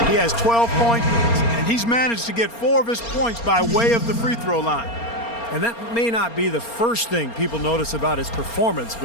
He has 12 points, and he's managed to get 4 of his points by way of the free throw line. And that may not be the first thing people notice about his performance,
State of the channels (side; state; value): right; late; 4.3 ms